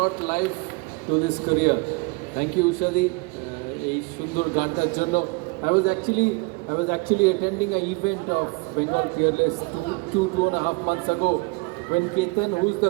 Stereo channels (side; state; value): left; quieter; 28.4 dB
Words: life to this career. Thank you, Usha di. এই সুন্দর গানটার জন্য I was actually attending an event of Bengal Peerless two and a half months ago when Ketan, who's